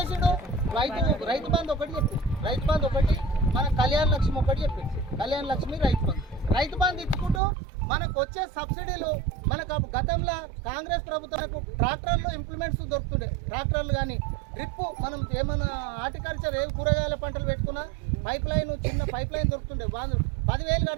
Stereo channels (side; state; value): left; drops out; at 7.4 s